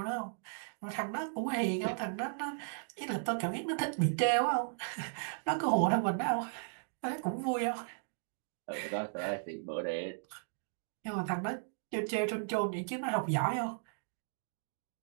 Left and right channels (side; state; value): left; silent; digital silence